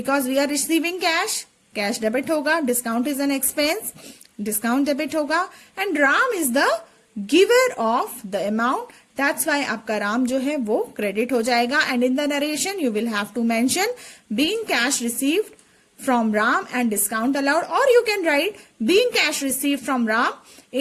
we are receiving cash, cash debit होगा, discount is an expense, discount debit होगा, and Ram is the giver of the amount. That's why आपका राम जो है वो credit हो जाएगा. And in the narration you will have to mention being cash received from Ram and discount allowed, और you can write being cash received from Ram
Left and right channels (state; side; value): identical; both; correlation 1.00